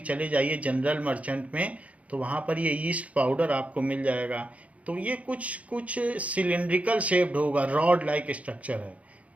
चले जाइए जनरल मर्चेंट में, तो वहाँ पर ये ईस्ट पाउडर आपको मिल जाएगा। तो ये कुछ सिलिंड्रिकल शेप्ड होगा, रॉड लाइक स्ट्रक्चर है।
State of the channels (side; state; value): left; late; 0.066 ms